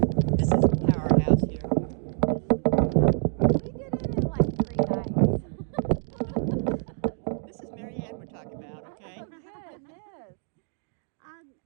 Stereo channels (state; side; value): silent; left; 57 dB below the other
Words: This is the powerhouse here. We did it in like 3 nights. This is Marianne we're talking about, okay? Oh, goodness.